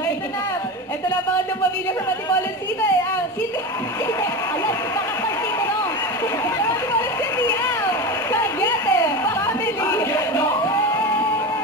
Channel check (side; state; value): both; normal; correlation 0.23